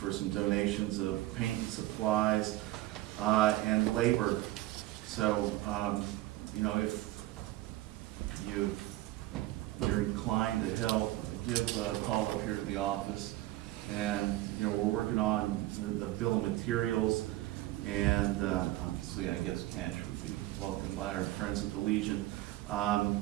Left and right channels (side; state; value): left; quieter; 16.6 dB